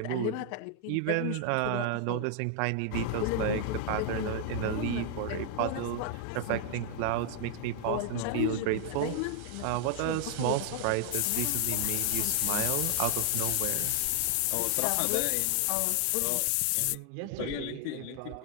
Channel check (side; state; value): both; different; correlation 0.00